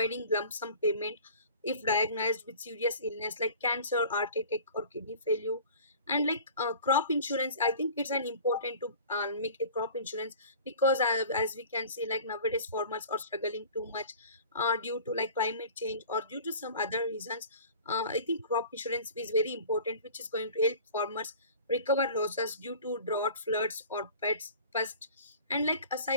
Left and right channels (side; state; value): both; inverted; correlation -0.43